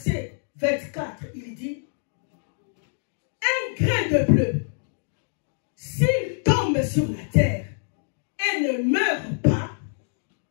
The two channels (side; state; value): right; silent; digital silence